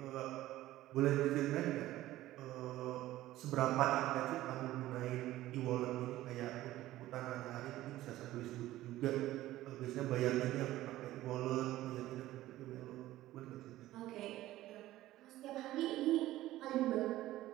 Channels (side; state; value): left; quieter; 15.4 dB